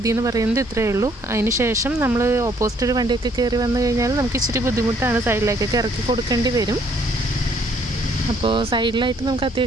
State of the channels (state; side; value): normal; both; correlation 0.65